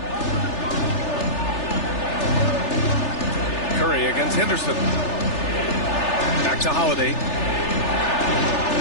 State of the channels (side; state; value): right; late; 3.4 ms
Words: Curry against Henderson. Back to Holiday.